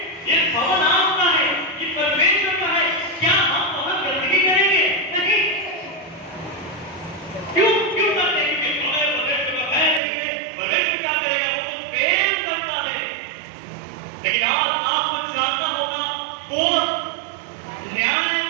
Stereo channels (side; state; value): left; drops out; at 10.0 s